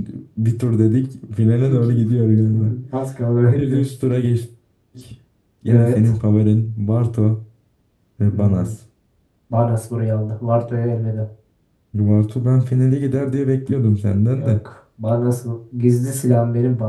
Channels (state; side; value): identical; both; correlation 1.00